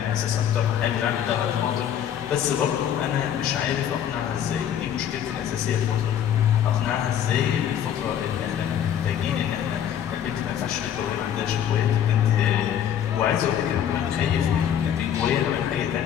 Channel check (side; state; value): right; quieter; 9.7 dB